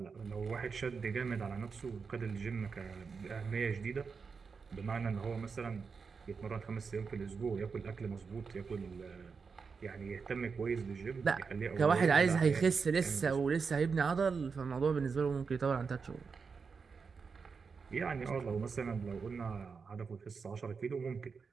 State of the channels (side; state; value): left; quieter; 5.3 dB